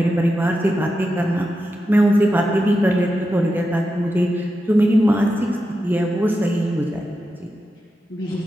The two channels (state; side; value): normal; both; correlation 0.89